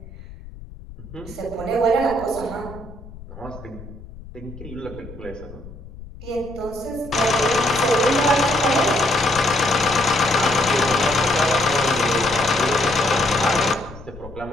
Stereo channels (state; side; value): noise; left; rumble, 16 dB below the sound